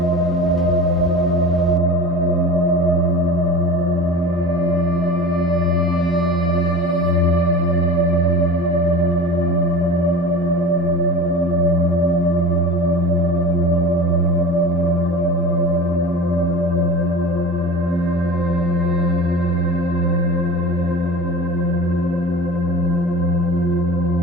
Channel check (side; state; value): both; normal; correlation 0.36